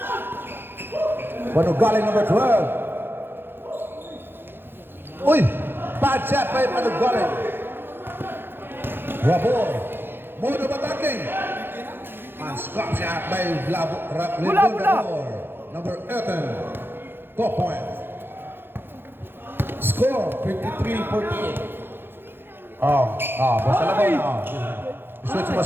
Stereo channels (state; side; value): late; left; 0.10 ms